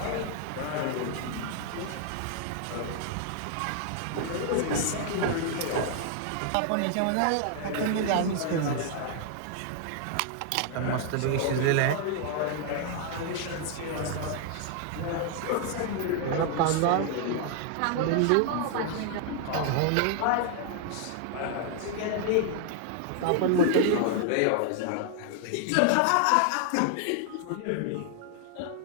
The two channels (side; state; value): both; different; correlation 0.00